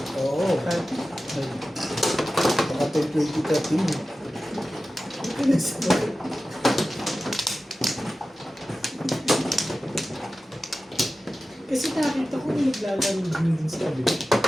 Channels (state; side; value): normal; both; correlation 0.94